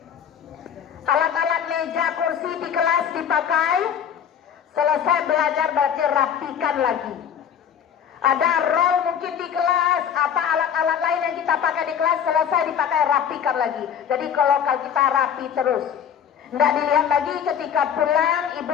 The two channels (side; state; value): right; quieter; 8.3 dB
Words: Alat-alat meja kursi di kelas dipakai, selesai belajar berarti rapikan lagi. Ada roll mungkin di kelas, apa alat-alat lain yang kita pakai di kelas, selesai dipakai rapikan lagi. Jadi kalau kita rapi terus, tidak dilihat lagi ketika pulang